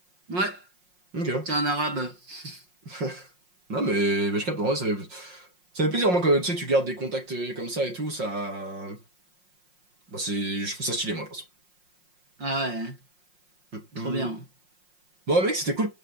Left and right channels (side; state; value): left; late; 5.6 ms